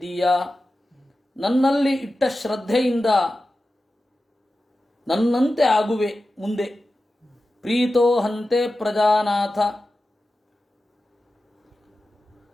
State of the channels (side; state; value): both; normal; correlation 0.93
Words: ನನ್ನಲ್ಲಿ ಇಟ್ಟ ಶ್ರದ್ಧೆಯಿಂದ ನನ್ನಂತೆ ಆಗುವೆ ಮುಂದೆ. ಪ್ರೀತೋ ಹಂತೆ ಪ್ರಜಾನಾಥ